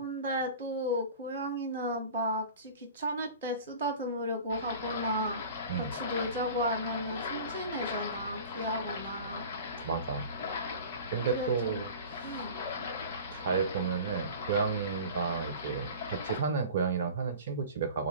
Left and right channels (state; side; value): inverted; both; correlation -0.39